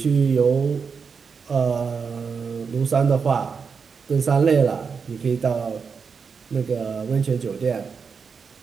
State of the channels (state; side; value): quieter; left; 5.7 dB